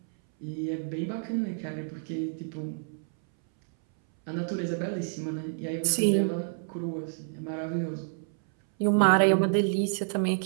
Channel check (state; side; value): silent; left; 59 dB below the other